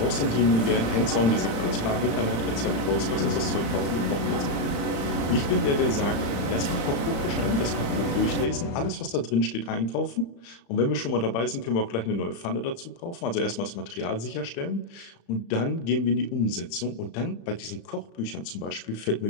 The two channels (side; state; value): right; late; 35 ms